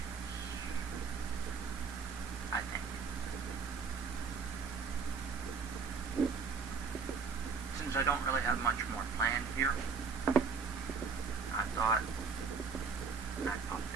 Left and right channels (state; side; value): quieter; left; 5.3 dB